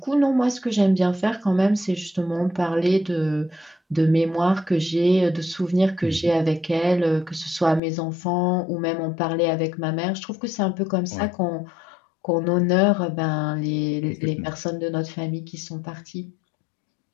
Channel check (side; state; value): right; drops out; at 7.8 s